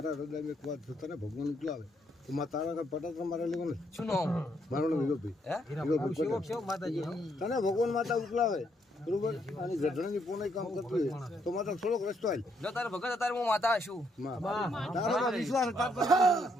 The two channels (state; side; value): normal; both; correlation 0.73